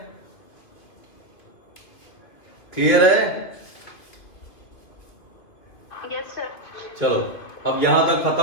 क्लियर है? Yes sir. चलो अब यहां तक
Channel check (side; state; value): right; late; 2.8 ms